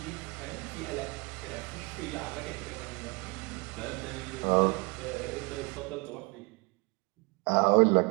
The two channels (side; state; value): left; quieter; 29.3 dB